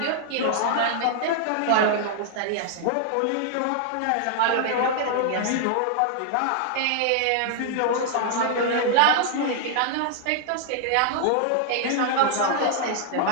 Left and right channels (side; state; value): both; different; correlation -0.01